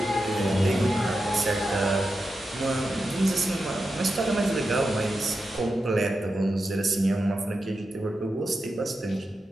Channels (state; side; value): normal; both; correlation 0.89